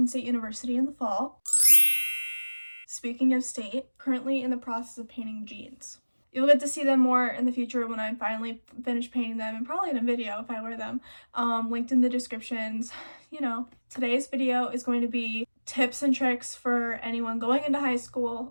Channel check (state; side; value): inverted; both; correlation -1.00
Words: State University in the fall. Speaking of state, currently in the process of painting jeans. You'll get to see them more in the future when I finally finish painting them, and probably in a video if I wear them, linked in the descriptions. Today's video is going to be tips and tricks for anyone going into high